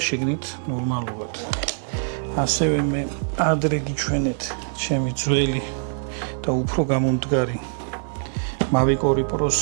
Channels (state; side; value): silent; left; 63 dB below the other